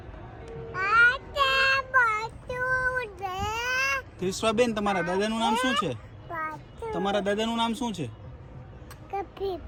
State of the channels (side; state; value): both; identical; correlation 1.00